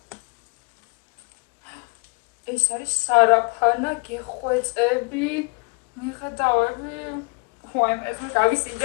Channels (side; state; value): right; quieter; 30.6 dB